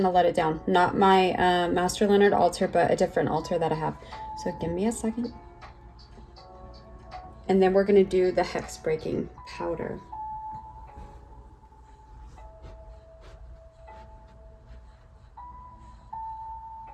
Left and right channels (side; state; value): both; identical; correlation 1.00